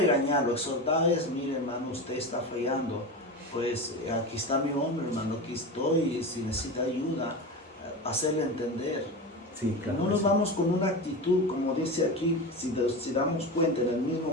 exhortar es, mire hermano, usted está fallando, pues aquí está mi hombre hermano, aquí estoy, si necesita ayuda, hacerle entender. Sí, claro, no nos vamos con una actitud, como dice aquí, si damos cuenta, en el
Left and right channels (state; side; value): normal; both; correlation 0.24